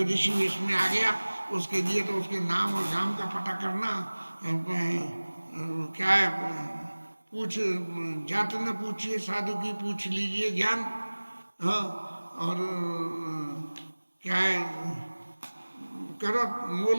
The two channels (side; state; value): both; inverted; correlation -1.00